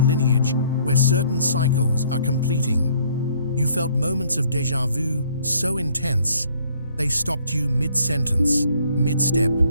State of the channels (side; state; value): both; inverted; correlation -0.61